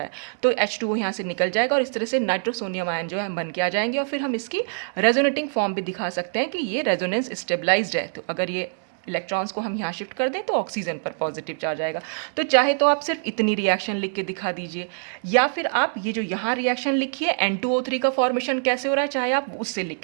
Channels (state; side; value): silent; left; digital silence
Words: तो H2O यहाँ से निकल जाएगा, और इस तरह से नाइट्रोसोनियम आयन जो है बन के आ जाएंगे। और फिर हम इसकी रेजोनेटिंग फॉर्म भी दिखा सकते हैं कि ये रेजोनेंस स्टेबलाइज्ड है, तो अगर ये इलेक्ट्रॉन्स को हम यहाँ शिफ्ट कर दें तो ऑक्सीजन पर पॉजिटिव चार्ज आएगा। तो चाहे तो आप सिर्फ इतनी रिएक्शन लिख के दिखा दीजिए, या फिर आप ये जो यहाँ रिएक्शन लिखिए N2O3 का फॉर्मेशन कैसे हो रहा है, चाहे आप उससे लिख